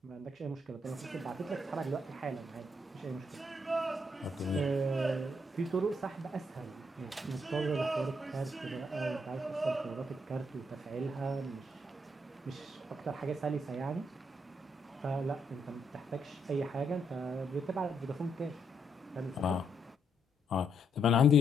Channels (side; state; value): both; normal; correlation 0.76